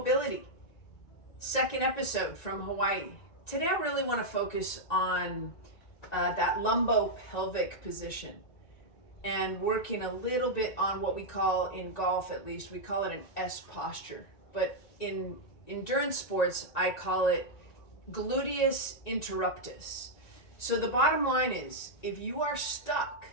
second episode from Hawaii. Today, I really want to focus on that lumbo-pelvic position and working a little bit on what we call, in golf at least, we call it an S posture. But in endurance sports, I call it gluteus interruptus. So, the bottom line is, if you are stuck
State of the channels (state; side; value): late; right; 1.9 ms